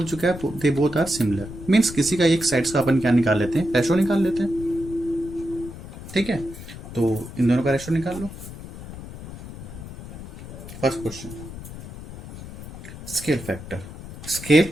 चुका है they both are similar, means किसी का एक साइड्स का अपन क्या निकाल लेते हैं? रेशो निकाल लेते हैं. ठीक है. तो इन दोनों का रेशो निकाल लो. First question, scale factor. Scale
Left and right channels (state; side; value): noise; left; rumble, 13 dB below the sound